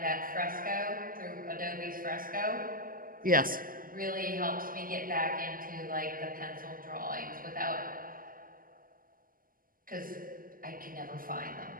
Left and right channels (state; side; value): late; left; 0.41 ms